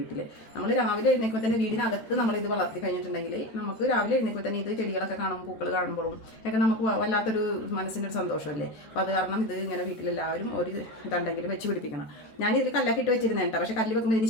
നമ്മൾ രാവിലെ എഴുന്നേൽക്കുമ്പോൾ തന്നെ വീടിനകത്ത് നമ്മളിത് വളർത്തി കഴിഞ്ഞിട്ടുണ്ടെങ്കിൽ നമുക്ക് രാവിലെ എഴുന്നേൽക്കുമ്പോൾ തന്നെ ഇത് ചെടികളൊക്കെ കാണുമ്പോൾ പൂക്കൾ കാണുമ്പോഴും ഒക്കെ നമുക്ക് വല്ലാത്തൊരു മനസ്സിനൊരു സന്തോഷമല്ലേ. അപ്പോൾ അത് കാരണം ഇത് ഇങ്ങനെ വീട്ടിലെല്ലാവരും ഒരു ഇതുണ്ടെങ്കിലും വെച്ച് പിടിപ്പിക്കണം. ഞാനിതിൽ കല്ലൊക്കെ ഇട്ട് വെച്ചിരുന്നേട്ടോ. പക്ഷേ കല്ല് വെക്കുമ്പോൾ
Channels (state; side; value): late; right; 14 ms